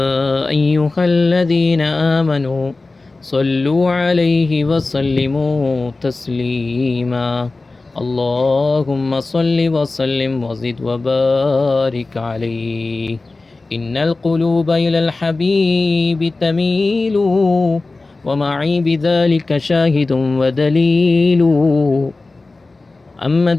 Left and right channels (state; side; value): quieter; right; 3.4 dB